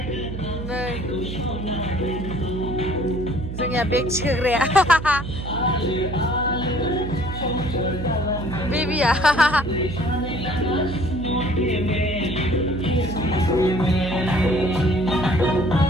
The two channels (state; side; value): noise; right; hum, 7 dB below the sound